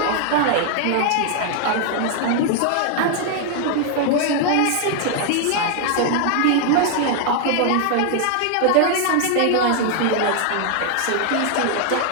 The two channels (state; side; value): different; both; correlation 0.00